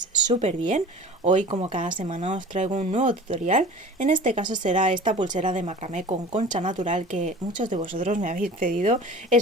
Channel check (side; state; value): both; normal; correlation 0.40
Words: súper bien. Hoy, como cada semana, os traigo un nuevo tutorial. En este caso será esta pulsera de macramé con concha natural que muchos de vosotros me habéis pedido.